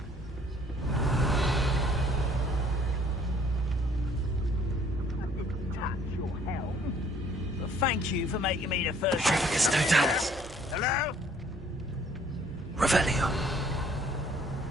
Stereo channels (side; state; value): both; normal; correlation 0.59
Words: But thank you for making me the first. Tricus Totalis. Hello? Revelio.